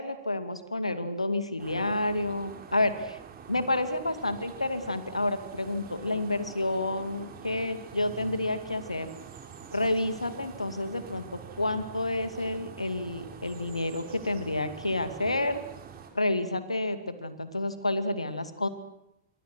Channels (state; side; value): inverted; both; correlation -0.81